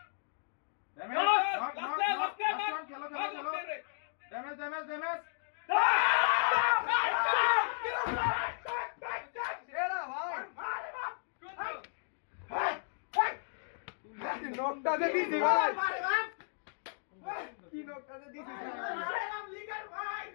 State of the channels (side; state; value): right; silent; digital silence